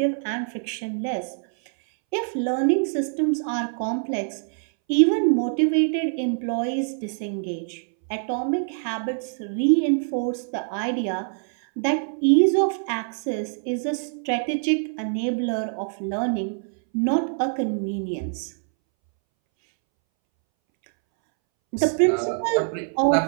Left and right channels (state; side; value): silent; left; 62 dB below the other